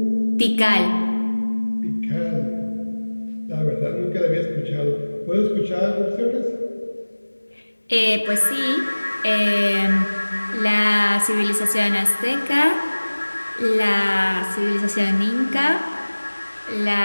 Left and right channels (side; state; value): both; inverted; correlation -1.00